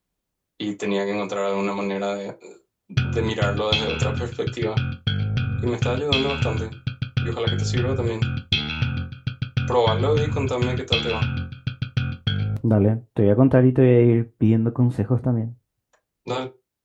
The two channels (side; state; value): both; identical; correlation 1.00